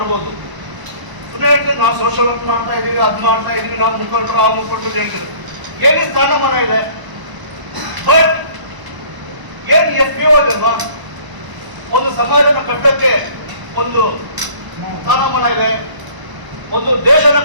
ಸುಮ್ಮನೆ ಹೇಳ್ತೀವಿ ನಾವು ಸೋಷಿಯಲ್ ವರ್ಕ್ ಮಾಡ್ತಾ ಇದೀವಿ, ಅದು ಮಾಡ್ತಾ ಇದೀವಿ, ನಾವು ಮುಖಂಡರು ಆ ಮುಖಂಡರು ಹೇಳ್ತೀವಿ. ಏನೇ ಸ್ಥಾನಮಾನ ಇದೆ, ಬಟ್ ಏನು FPO ಇದಲ್ವಾ, ಒಂದು ಸಮಾಜನ ಕಟ್ಟಕ್ಕೆ ಒಂದು ಸ್ಥಾನಮಾನ ಇದೆ, ಒಂದು ದೇಶನ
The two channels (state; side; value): late; left; 1.0 ms